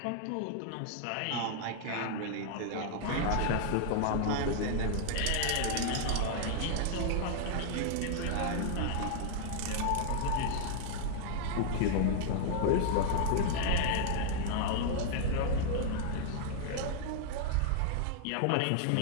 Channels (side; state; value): both; different; correlation 0.00